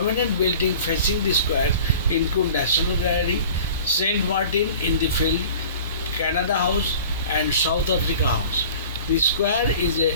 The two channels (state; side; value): inverted; both; correlation -0.43